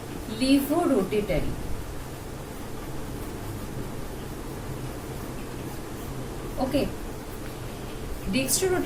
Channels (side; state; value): both; identical; correlation 1.00